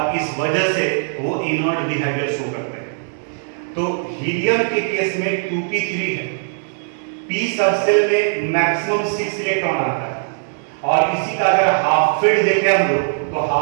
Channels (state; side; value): silent; left; digital silence